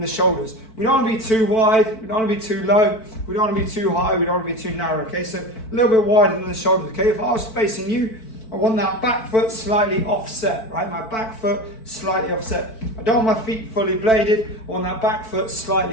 shoulders. We don't want to be too wide, we don't want to be too low, we don't want to be too high, we don't want to be too narrow. Okay, so a little bit wider than the shoulders. Okay, if I was facing you, I want that back foot slightly offset, right? My back foot slightly offset. I don't want my feet fully bladed. I want that back foot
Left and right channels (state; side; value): late; right; 4.5 ms